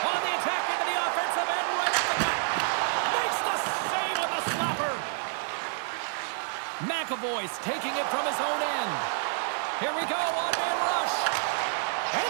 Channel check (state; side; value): silent; left; 59 dB below the other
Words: On the attack into the offensive end, right at the gut. Makes the save on the slapper. McAvoy's taking it from his own end. Here we go, one-man rush. And